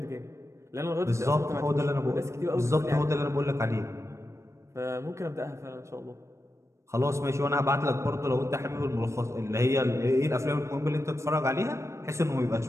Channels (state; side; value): late; left; 0.14 ms